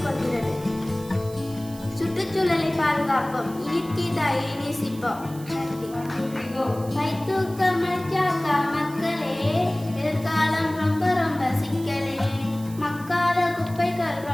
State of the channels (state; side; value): noise; right; hiss, 19 dB below the sound